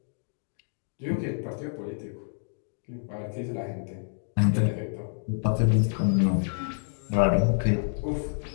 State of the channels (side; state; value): right; silent; digital silence